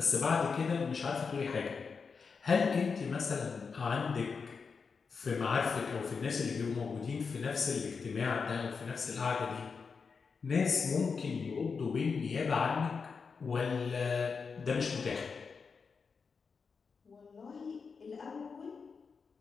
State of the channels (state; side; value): quieter; right; 5.3 dB